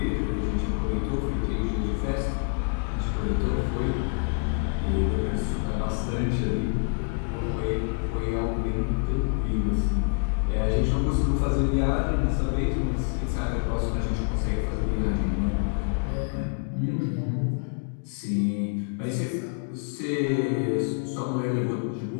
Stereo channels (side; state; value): right; quieter; 38.6 dB